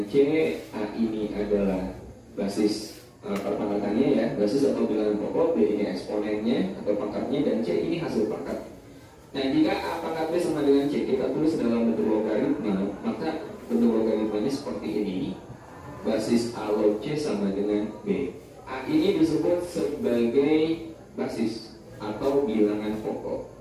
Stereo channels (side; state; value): both; identical; correlation 1.00